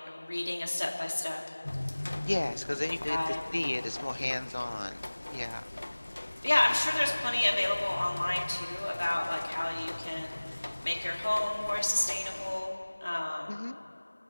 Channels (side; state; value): both; inverted; correlation -1.00